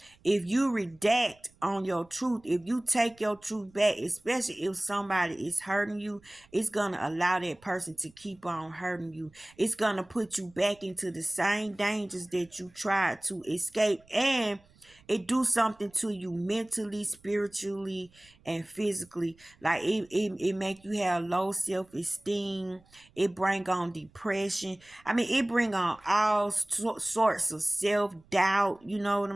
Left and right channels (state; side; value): noise; right; rumble, 30 dB below the sound